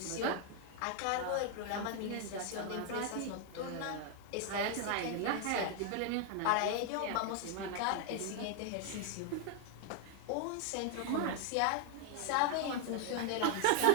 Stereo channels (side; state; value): both; different; correlation 0.00